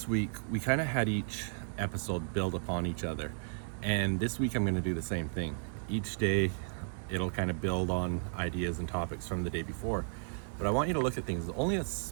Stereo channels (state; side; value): silent; left; digital silence